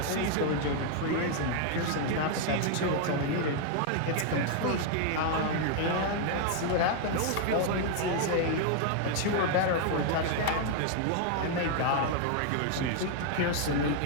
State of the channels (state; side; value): different; both; correlation 0.00